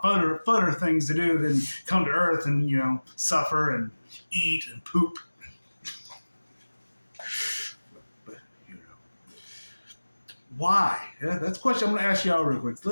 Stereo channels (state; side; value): inverted; both; correlation -1.00